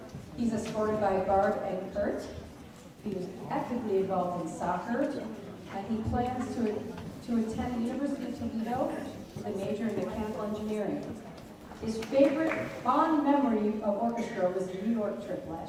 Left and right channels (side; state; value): both; identical; correlation 1.00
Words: He's escorted by Barb and Kurt. He was actively involved in soccer, and he plans to attend the University of Toledo with a major in mechanical engineering. His favorite fond memory of orchestra was the New York trip